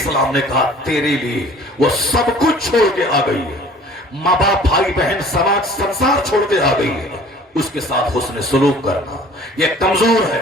نے کہا تیرے لیے وہ سب کچھ چھوڑ کے آ گئی ہے، ماں باپ بھائی بہن سماج سنسار چھوڑ کے آ گئی ہے. اس کے ساتھ حسن سلوک کرنا. یہ کمزور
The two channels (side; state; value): both; normal; correlation 0.49